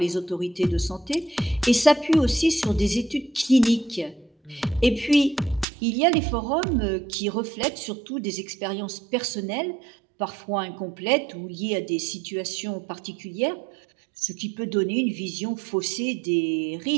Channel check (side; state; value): left; drops out; at 5.7 s